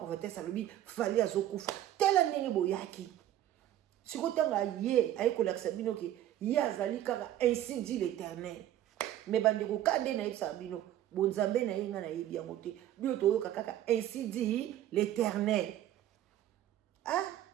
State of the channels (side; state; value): left; quieter; 12.4 dB